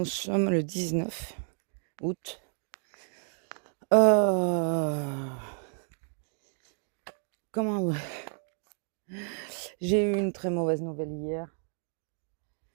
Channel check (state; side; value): silent; left; 57 dB below the other